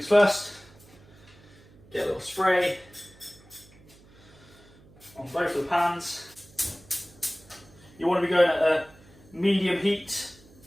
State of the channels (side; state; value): right; noise; hum, 25 dB below the sound